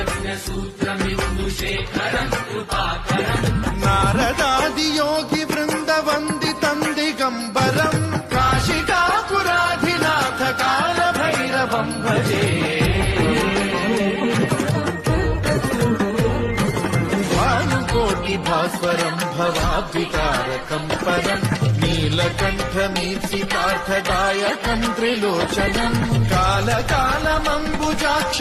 सूत्रमिन्दुशेखरं कृपाकरम् नारदादि योगि वृन्द वन्दितं दिगम्बरं काशिकापुराधिनाथ काल भैरवं भजे भास्वरं भवाद्विकारकं परं नीलकण्ठमीप्सितार्थदायकं त्रिलोचनं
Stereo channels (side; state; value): both; identical; correlation 1.00